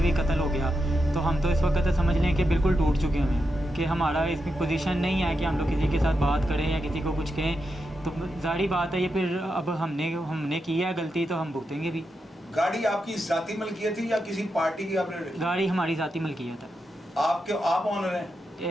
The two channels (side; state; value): both; normal; correlation 0.87